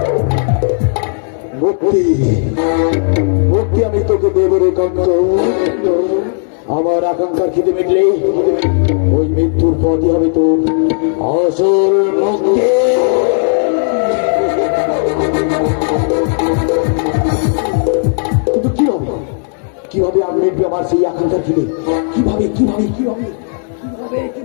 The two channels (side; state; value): right; silent; 61 dB below the other